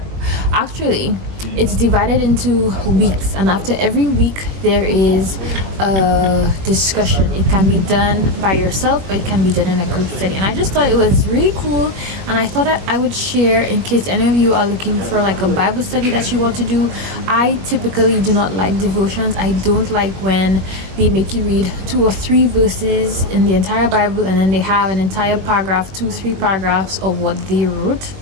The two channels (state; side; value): late; left; 21 ms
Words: actually it's divided into weeks, and after every week there is a discussion. It can be done by yourself, or it can be done in a group study, and I just thought it was really cool, and I thought that I would share in case any of you are looking for like a Bible study that you want to do. I typically do not like devotions. I don't like when they make you read 2 or 3 verses in the entire Bible and then they have an entire paragraph, 2-3 paragraphs of what they wrote,